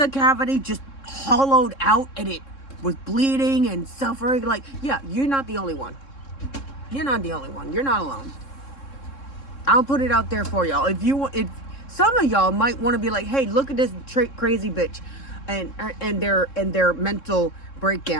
a cavity just hollowed out and it was bleeding and suffering. Like, yeah, you're not the only one. You're not the only one. You're not alone. I'll put it out there for y'all. If some of y'all might want to be like, hey, look at this crazy bitch and their mental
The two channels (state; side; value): late; right; 3.7 ms